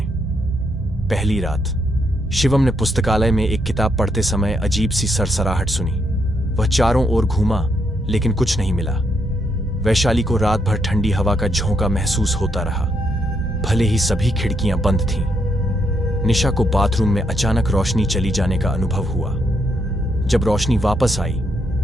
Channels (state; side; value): normal; both; correlation 0.77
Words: पहली रात शिवम ने पुस्तकालय में एक किताब पढ़ते समय अजीब सी सरसराहट सुनी। वह चारों ओर घूमा, लेकिन कुछ नहीं मिला। वैशाली को रात भर ठंडी हवा का झोंका महसूस होता रहा, भले ही सभी खिड़कियां बंद थीं। निशा को बाथरूम में अचानक रोशनी चली जाने का अनुभव हुआ। जब रोशनी वापस आई